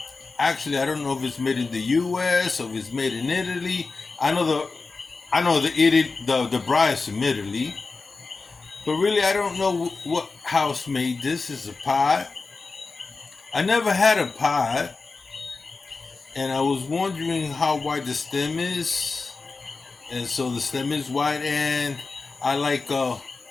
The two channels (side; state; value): right; quieter; 4.1 dB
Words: Actually, I don't know if it's made in the U.S. or if it's made in Italy. I know the bride's from Italy, but really I don't know what house made this. It's a pot. I never had a pot, and I was wondering how wide the stem is, and so the stem is wide, and I like